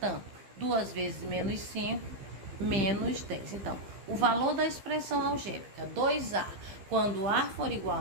2 vezes menos 5, menos 10. Então, o valor da expressão algébrica 2A, quando A for igual a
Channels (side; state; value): left; late; 15 ms